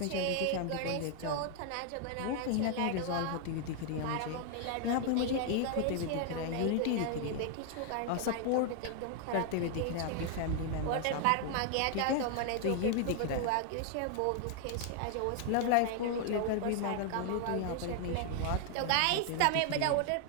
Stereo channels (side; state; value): both; different; correlation 0.00